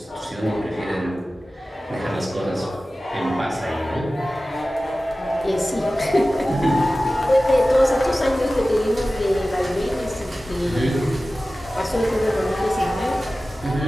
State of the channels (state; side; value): normal; both; correlation 0.96